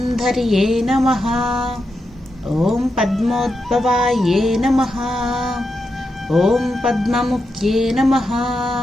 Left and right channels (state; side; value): normal; both; correlation 0.87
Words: నమః, ఓం పద్మోద్భవాయే నమః, ఓం పద్మముఖ్యే నమః,